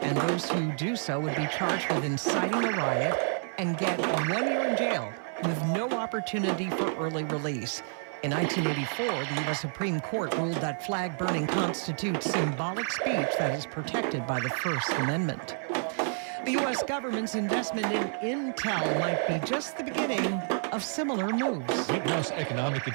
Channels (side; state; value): left; silent; 58 dB below the other